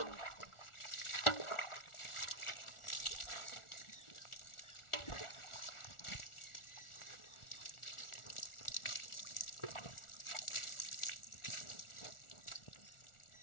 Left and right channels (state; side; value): late; right; 1.4 ms